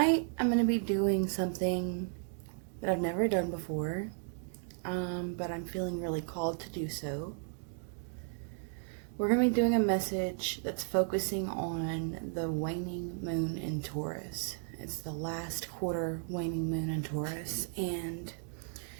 I'm going to be doing something that I've never done before, but I'm feeling really called to do so. We're going to be doing a message that's focusing on the waning moon in Taurus. It's the last quarter waning moon in Taurus, and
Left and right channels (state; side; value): silent; left; 55 dB below the other